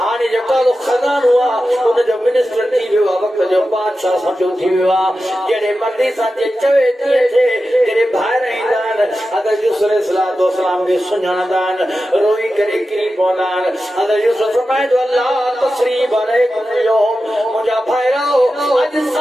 हाने जो कालो खजान हुआ उन जो मिनिस्टर थी वियो वक्त जो बादशाह समझो थी वियो जेड़े मर्दी सा जे चवे थे जेड़े बाहर ईंदान हज़रत यूसुफ अलैहिस्सलाम के सुञाणदान रोई करे किरी पवंदान हज़रत यूसुफ फरमाए जो अल्लाह तस्रीब अलैकुम यौम मुजा भाइरो अज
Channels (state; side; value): normal; both; correlation 0.92